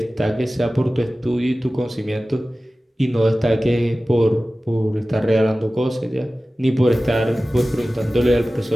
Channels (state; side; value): normal; both; correlation 0.96